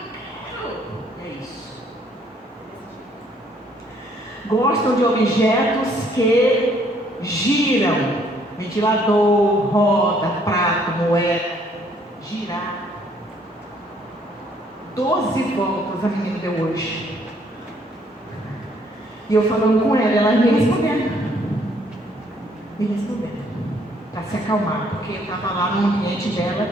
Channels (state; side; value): normal; both; correlation 0.65